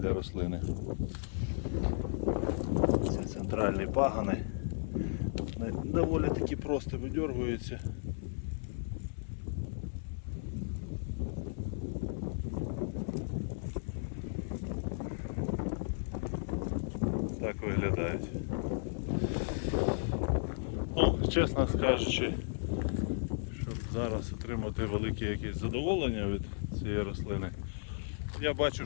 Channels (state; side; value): silent; right; 55 dB below the other